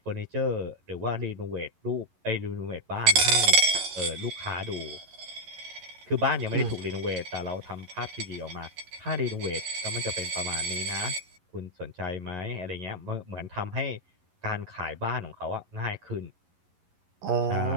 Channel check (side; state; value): left; late; 11 ms